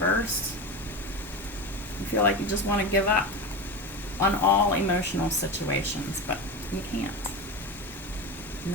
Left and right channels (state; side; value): normal; both; correlation 0.23